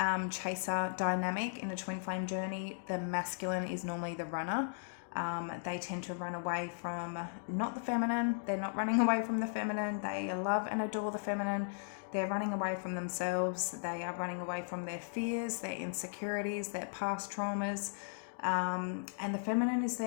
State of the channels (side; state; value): right; silent; digital silence